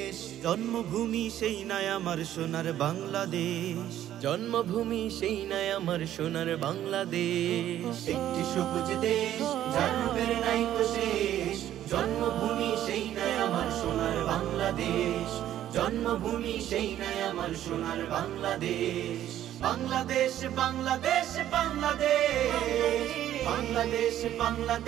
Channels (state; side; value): quieter; left; 12.0 dB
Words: জন্মভূমি সেই নাই আমার সোনার বাংলাদেশ। জন্মভূমি সেই নাই আমার সোনার বাংলাদেশ। একটি সবুজ দেশ যার রূপের নাইকো শেষ, জন্মভূমি সেই নাই আমার সোনার বাংলাদেশ। জন্মভূমি সেই নাই আমার সোনার বাংলাদেশ। বাংলাদেশ বাংলাদেশ বাংলাদেশ বাংলাদেশ